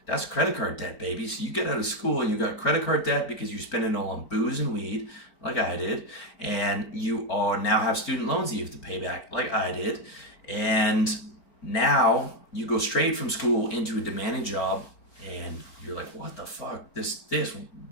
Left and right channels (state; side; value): late; right; 4.4 ms